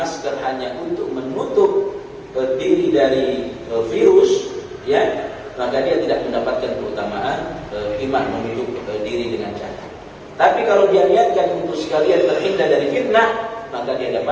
hanya untuk menutup diri dari virus, ya, maka dia tidak mendapatkan keutamaan iman menutup diri dengan cadar. Tapi kalau dia niatkan untuk sekalian terhindar dari fitnah, maka dia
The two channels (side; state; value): both; identical; correlation 1.00